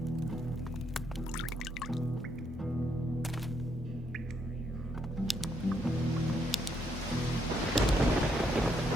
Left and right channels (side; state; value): both; normal; correlation 0.75